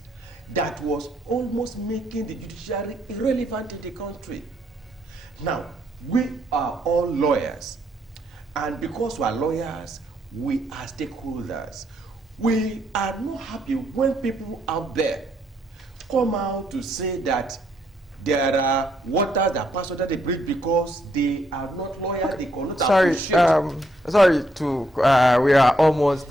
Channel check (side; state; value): both; normal; correlation 0.74